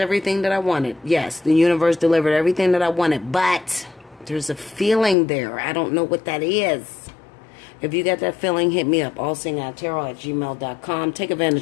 that I wanted. Yes, the universe delivered everything that I wanted. But there's a feeling there. I don't know what that is. If you got that feeling, hit me up. Allseeingeyetarot@gmail.com. Take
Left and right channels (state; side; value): drops out; right; at 5.2 s